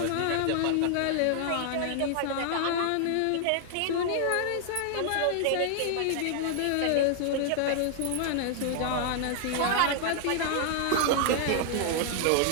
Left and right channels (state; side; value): different; both; correlation 0.00